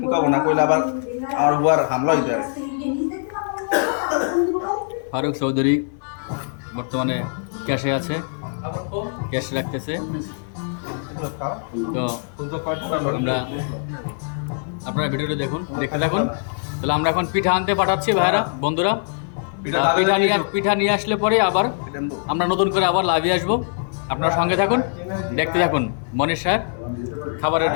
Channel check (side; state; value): right; silent; 58 dB below the other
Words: কব না, কইলে আবার আমার বুয়ার হামলা হইতে পারে। ফারুক চৌধুরী বর্তমানে ক্যাশে আছে, ক্যাশ রাখতেছে। তো আপনারা ভিডিওটা দেখতে থাকুন। তাহলে আমরা এখন পিঠা আনতে পাঠাচ্ছি ভাইয়ারা, বন্ধুরা। পিঠা নিয়ে আসলে পরে আবার আমরা নতুন করে আবার লাইভে আসবো। আপনারা সঙ্গে থাকুন, দেখতে থাকুন মনীষ স্যার খাবারের